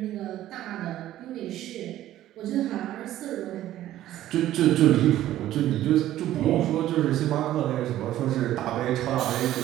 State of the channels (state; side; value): quieter; left; 13.5 dB